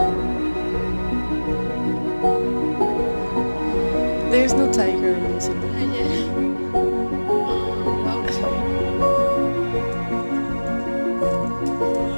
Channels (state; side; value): inverted; both; correlation -1.00